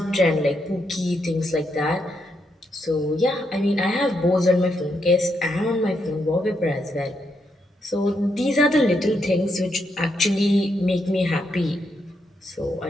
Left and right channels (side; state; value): both; normal; correlation 0.79